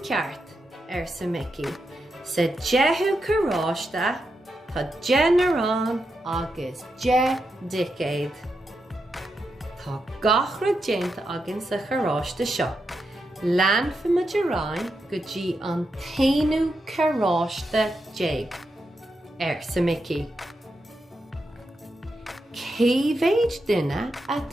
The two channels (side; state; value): both; normal; correlation 0.85